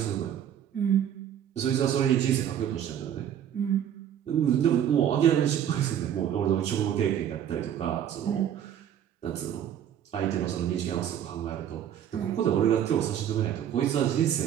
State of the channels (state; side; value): quieter; left; 9.9 dB